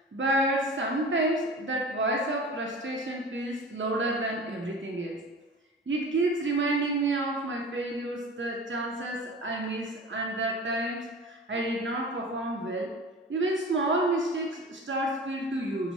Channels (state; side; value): normal; both; correlation 0.37